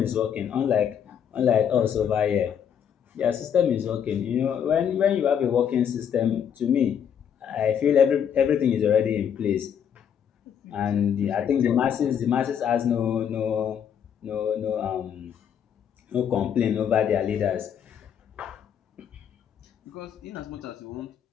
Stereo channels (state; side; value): quieter; right; 8.4 dB